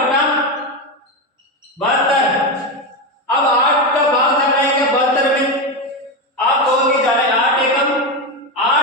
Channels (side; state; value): both; normal; correlation 0.13